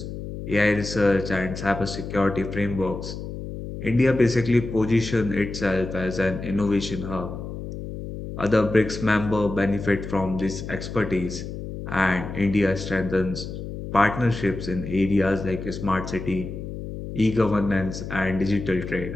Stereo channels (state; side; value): noise; left; hum, 8 dB below the sound